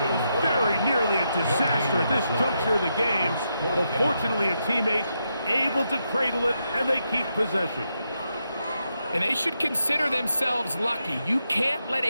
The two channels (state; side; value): inverted; both; correlation -0.83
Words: very nearly a disaster at this juncture of the game. But fortunately, a teammate able to cradle it, and they keep possession. And they should consider themselves lucky. You can't let